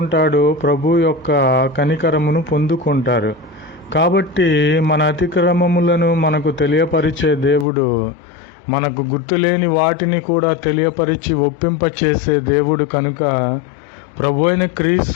ప్రభు యొక్క కనికరమును పొందుకుంటారు. కాబట్టి మన అతిక్రమములను మనకు తెలియపరిచే దేవుడు, మనకు గుర్తులేని వాటిని కూడా తెలియపరిచి ఒప్పింపచేసే దేవుడు కనుక ప్రభు అయిన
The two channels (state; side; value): drops out; right; at 7.7 s